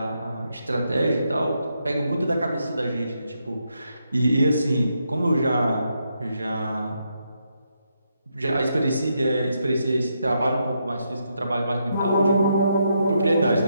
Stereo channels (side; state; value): both; inverted; correlation -0.80